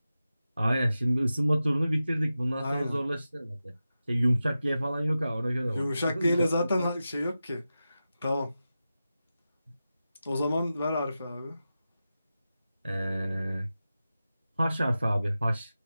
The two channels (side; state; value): both; inverted; correlation -0.93